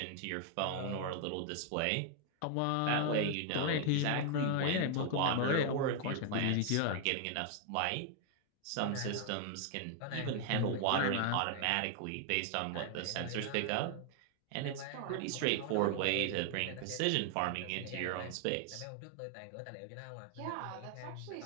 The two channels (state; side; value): different; both; correlation 0.00